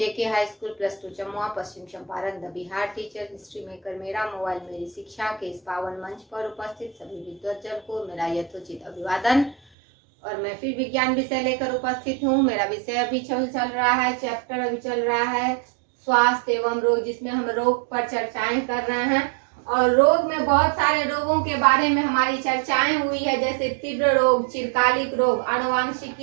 high school +2 Jamua Paschim Champaran the Bihar teacher history maker मेरा mobile मेरी शिक्षा के इस पावन मंच पर उपस्थित सभी विद्वतजन को मेरा यथोचित अभिवादन। और मैं फिर विज्ञान विषय लेकर उपस्थित हूँ। मेरा विषय अभी चल रहा है, चैप्टर अभी चल रहा है स्वास्थ्य एवं रोग, जिसमें हम रोग पर चर्चाएं कर रहे हैं। और रोग में बहुत सारे रोगों के बारे में हमारी चर्चाएं हुई है, जैसे तीव्र रोग, चिरकालिक रोग,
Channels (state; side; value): drops out; left; at 9.6 s